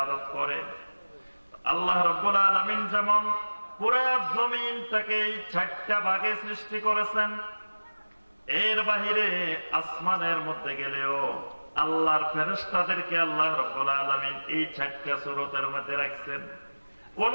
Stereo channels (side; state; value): both; inverted; correlation -1.00